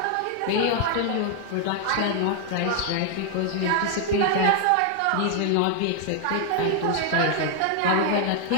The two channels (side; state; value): both; different; correlation 0.00